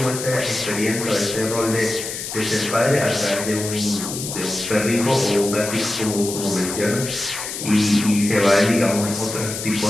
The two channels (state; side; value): noise; left; hiss, 7 dB below the sound